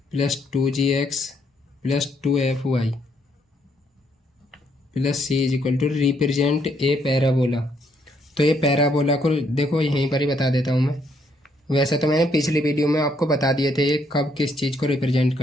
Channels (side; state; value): both; normal; correlation 0.72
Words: plus 2gx plus 2fy plus c is equal to represent a parabola. तो ये पैराबोला को देखो यहीं पर ही बता देता हूँ मैं। वैसे तो मैंने पिछली वीडियो में आपको बता दिए थे ये कब किस चीज़ को रिप्रेजेंट